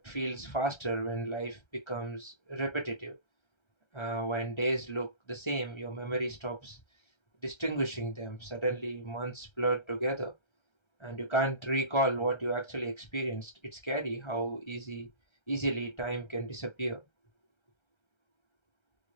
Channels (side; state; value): right; late; 1.3 ms